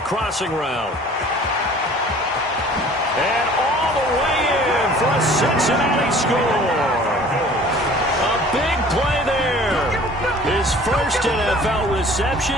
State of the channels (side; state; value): both; normal; correlation 0.49